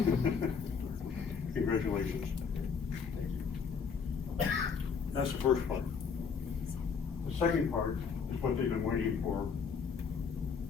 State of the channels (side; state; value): right; quieter; 5.9 dB